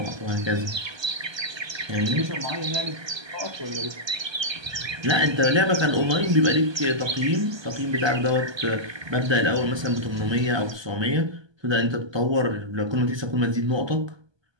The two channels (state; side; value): late; left; 1.2 ms